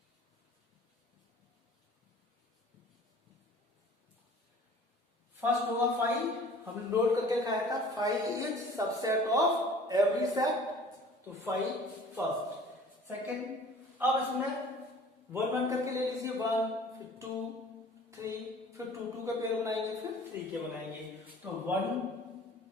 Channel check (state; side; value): normal; both; correlation 0.48